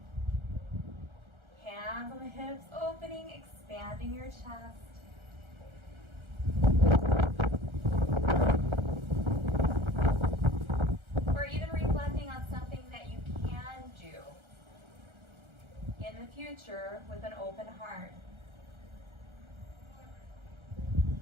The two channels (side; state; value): left; late; 1.3 ms